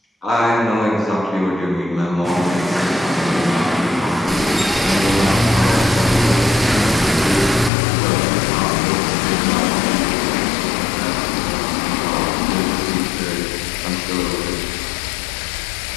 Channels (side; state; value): right; drops out; at 7.7 s